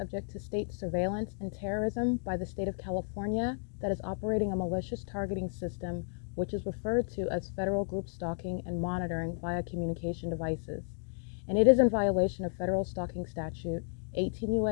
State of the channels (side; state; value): right; silent; digital silence